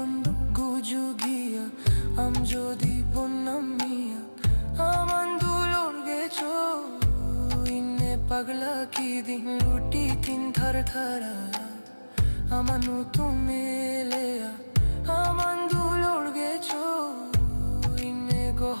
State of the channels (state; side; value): inverted; both; correlation -1.00